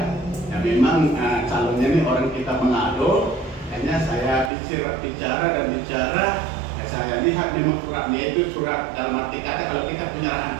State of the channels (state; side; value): drops out; left; at 4.5 s